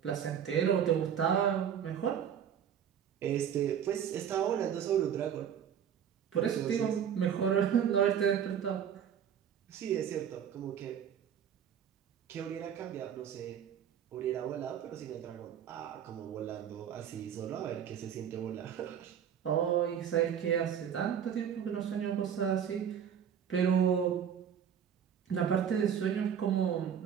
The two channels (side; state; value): left; quieter; 8.6 dB